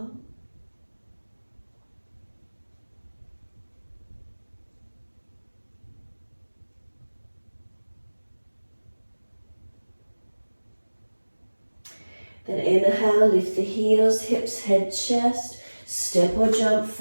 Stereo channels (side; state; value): both; inverted; correlation -1.00